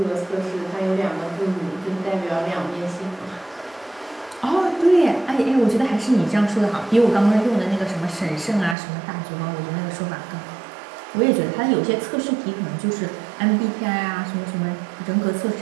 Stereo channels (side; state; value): left; drops out; at 8.8 s